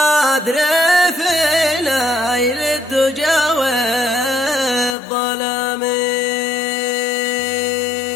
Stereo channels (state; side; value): drops out; right; at 5.0 s